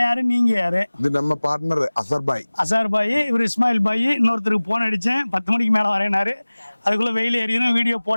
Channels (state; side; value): inverted; both; correlation -1.00